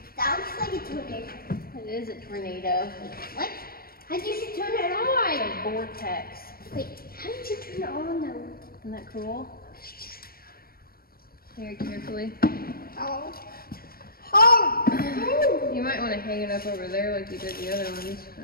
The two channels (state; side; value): late; right; 0.44 ms